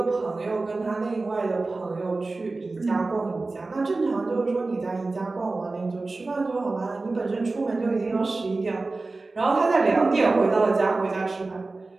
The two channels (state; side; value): quieter; left; 3.5 dB